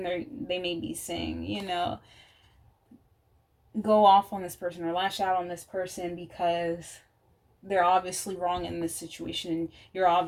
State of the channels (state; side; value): identical; both; correlation 1.00